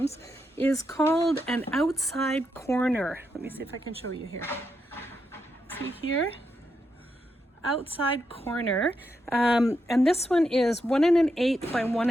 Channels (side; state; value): both; normal; correlation 0.83